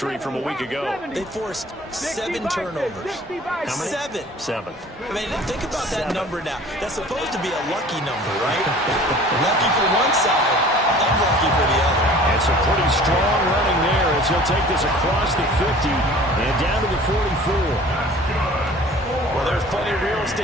from a week ago. They forced 7 turnovers. How many? 7. I mean, think about that number now. That's supposed to be a lucky number, right? Lucky for one side, unlucky for the other. And some pretty strong running there as he'll take this across the 50 and down to the 44. Well, there's plenty of real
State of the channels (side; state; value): both; normal; correlation 0.47